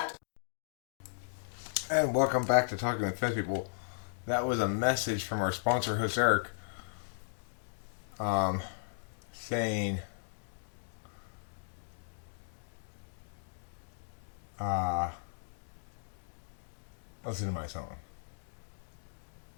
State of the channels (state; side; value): silent; right; digital silence